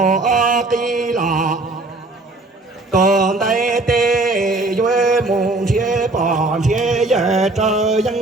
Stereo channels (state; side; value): quieter; left; 3.0 dB